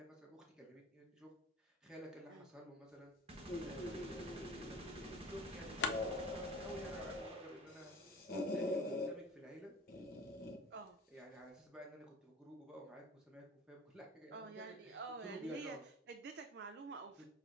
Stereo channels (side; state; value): both; normal; correlation 0.41